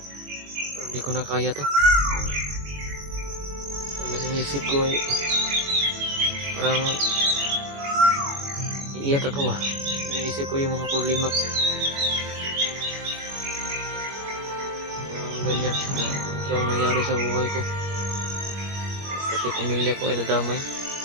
hindi ko na kaya to. Ang naisip ko ay parang iiyak ako ba. Naisip ko yung mga problema ganyan, ito ang nangyari sa buhay ko. Pati pamilya ko ay nadamay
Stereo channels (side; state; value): left; late; 21 ms